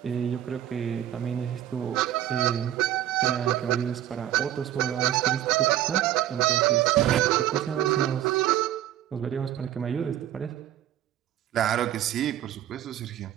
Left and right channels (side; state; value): left; quieter; 12.2 dB